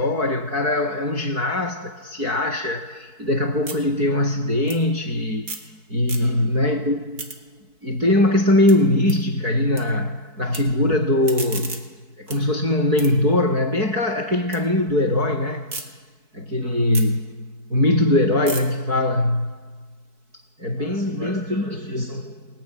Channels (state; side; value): late; left; 4.6 ms